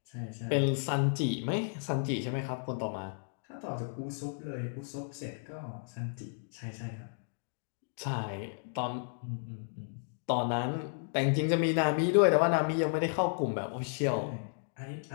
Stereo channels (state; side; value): silent; right; digital silence